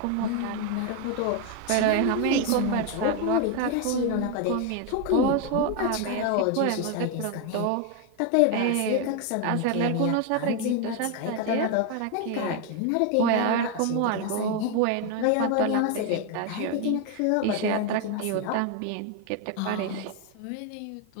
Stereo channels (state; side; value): different; both; correlation 0.01